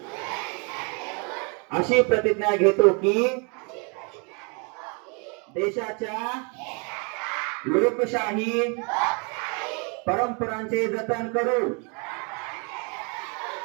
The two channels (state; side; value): quieter; left; 34.3 dB